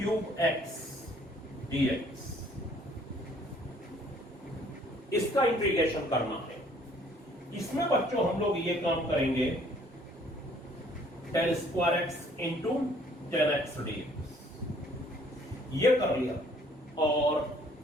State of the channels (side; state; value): both; normal; correlation 0.59